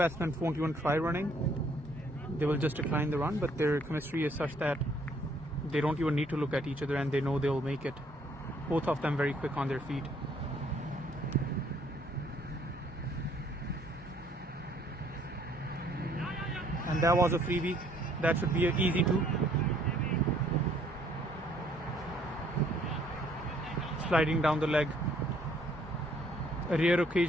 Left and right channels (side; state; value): both; normal; correlation 0.64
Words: won't even try running. They will just decline the run, but their chemistry is such that they don't even need to look at each other and they know they'll make it. Both of them very quick on their feet. And that was a freebie. That should be an easy 2. Sliding down the leg. A rare